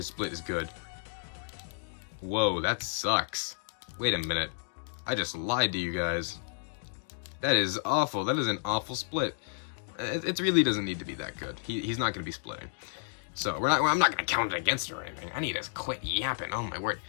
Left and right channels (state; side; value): silent; right; digital silence